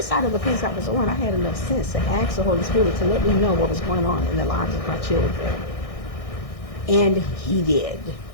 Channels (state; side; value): late; right; 1.6 ms